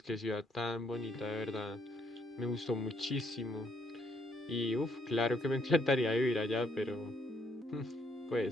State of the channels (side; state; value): both; normal; correlation 0.70